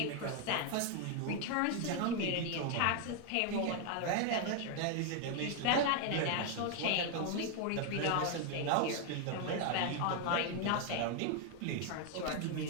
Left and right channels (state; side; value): different; both; correlation 0.00